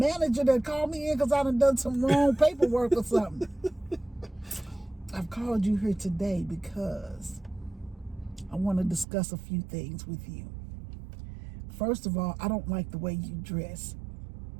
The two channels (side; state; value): left; drops out; at 9.1 s